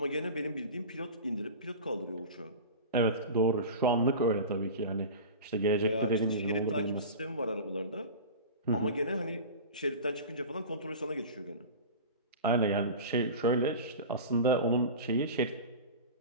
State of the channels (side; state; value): both; inverted; correlation -0.32